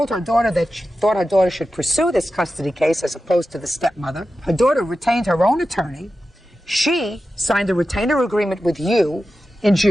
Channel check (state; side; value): normal; both; correlation 0.92